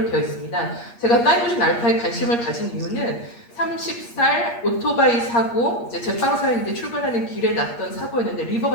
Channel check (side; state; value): right; late; 8.5 ms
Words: 되어 있습니다. 제가 타이머신 알파에 관심을 가진 이유는 30살 오토바이 사고 이제 제빵사인데 출근하는 길에 났던 사고였는데